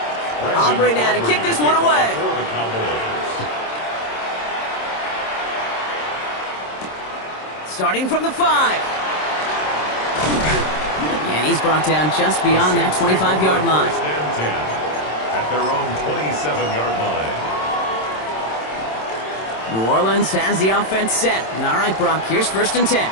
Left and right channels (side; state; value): right; late; 27 ms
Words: Aubrey now to kick this one away. Starting from the 5. And he's brought down just beyond that 25-yard line. At their own 27-yard line. New Orleans has the offense set. All right, Brock, here's 1st and 10.